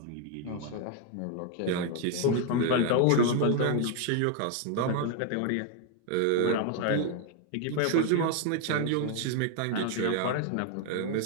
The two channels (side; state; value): both; different; correlation 0.00